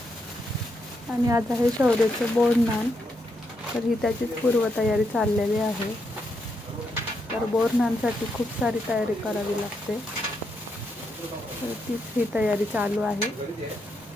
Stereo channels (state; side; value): normal; both; correlation 0.80